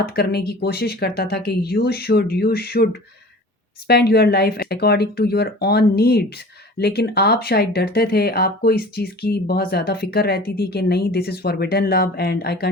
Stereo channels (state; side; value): normal; both; correlation 0.42